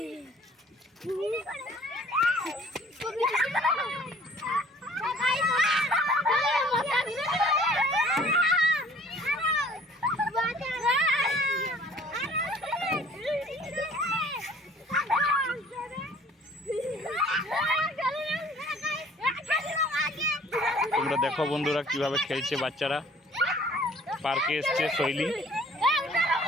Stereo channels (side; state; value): both; normal; correlation 0.54